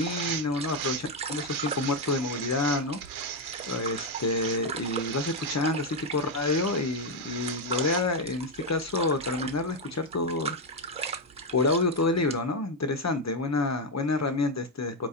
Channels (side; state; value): both; normal; correlation 0.06